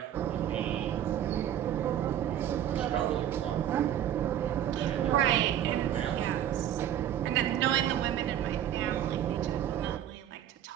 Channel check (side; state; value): left; quieter; 10.8 dB